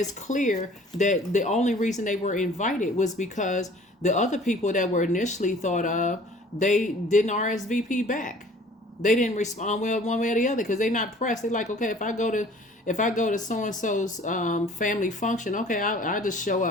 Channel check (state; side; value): normal; both; correlation 0.51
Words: clear that the only reason they were invited was because the other people that were initially thought of, they didn't RSVP back. They didn't respond well one way or the other because they're not pressed. They're like, okay, if I go to so and so's family function, okay, I just show